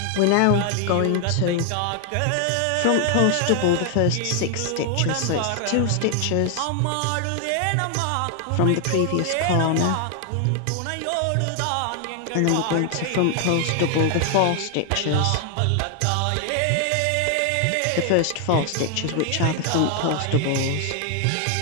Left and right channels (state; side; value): different; both; correlation 0.00